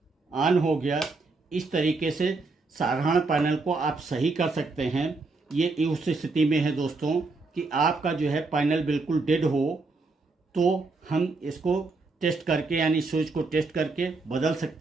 ऑन हो गया। इस तरीके से साधारण पैनल को आप सही कर सकते हैं। ये उस स्थिति में है दोस्तों कि आपका जो है पैनल बिल्कुल डेड हो, तो हम इसको टेस्ट करके यानी स्विच को टेस्ट करके बदल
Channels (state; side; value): quieter; left; 3.7 dB